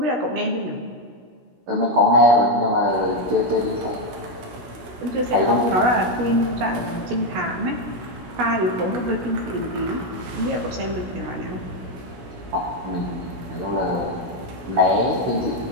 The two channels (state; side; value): late; left; 16 ms